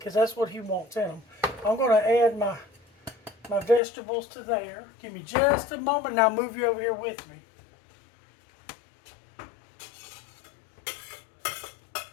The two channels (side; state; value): right; drops out; at 3.8 s